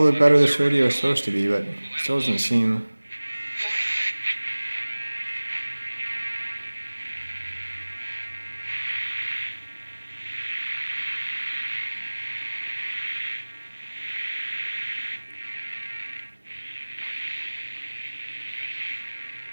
the better this radio is supposed to be, but it still doesn't seem.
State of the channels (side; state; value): both; inverted; correlation -1.00